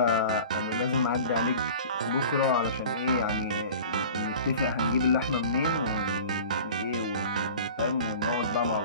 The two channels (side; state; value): both; inverted; correlation -0.40